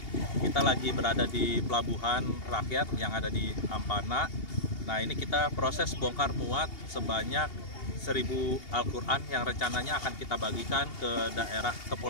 kita lagi berada di pelabuhan rakyat yang ada di Ampana. Nah ini kita proses bongkar muat sebanyak 1000 Al-Quran yang rencananya akan kita bagikan ke daerah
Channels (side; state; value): right; late; 2.8 ms